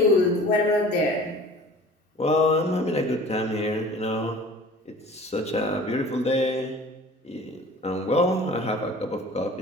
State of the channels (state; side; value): normal; both; correlation 0.44